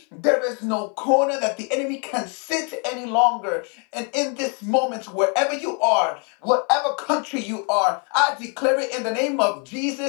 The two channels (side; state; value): right; quieter; 37.5 dB